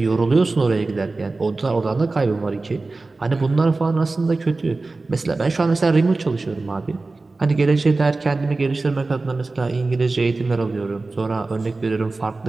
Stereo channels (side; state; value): left; quieter; 3.5 dB